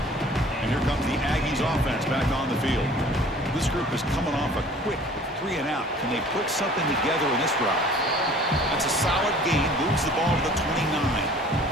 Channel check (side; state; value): both; normal; correlation 0.49